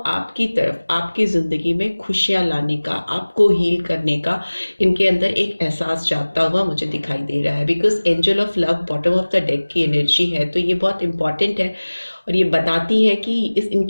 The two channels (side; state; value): both; inverted; correlation -1.00